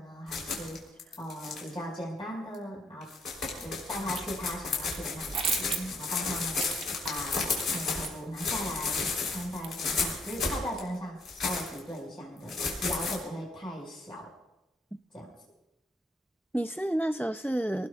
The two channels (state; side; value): normal; both; correlation 0.71